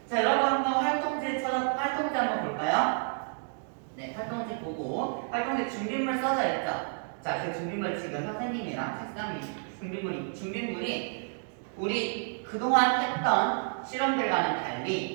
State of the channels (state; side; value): silent; left; 58 dB below the other